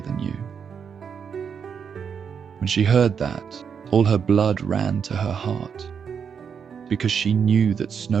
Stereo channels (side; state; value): left; quieter; 6.9 dB